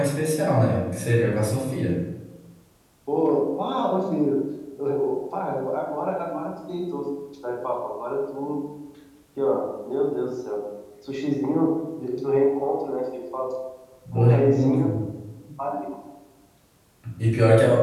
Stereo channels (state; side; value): identical; both; correlation 1.00